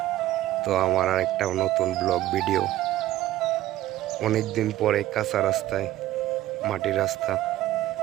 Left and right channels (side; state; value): left; quieter; 14.5 dB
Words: তো আমার আর একটা নতুন ব্লগ ভিডিও। অনেক দিন পরে কাঁচা রাস্তায়, মাটির রাস্তা,